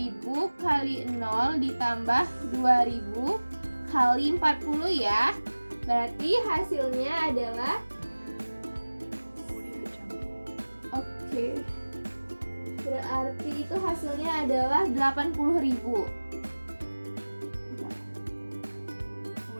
kali 0 ditambah 2.000 kali 40 ya. Berarti hasilnya adalah Audio Jungle. oke. Berarti itu hasilnya adalah 80.000.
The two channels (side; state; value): both; inverted; correlation -1.00